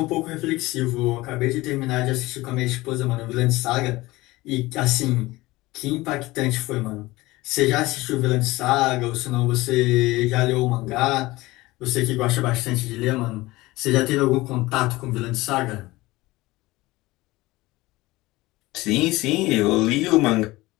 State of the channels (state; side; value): quieter; right; 19.8 dB